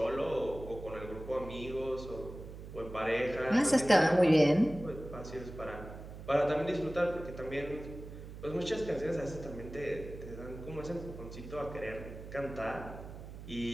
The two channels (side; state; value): right; noise; hum, 12 dB below the sound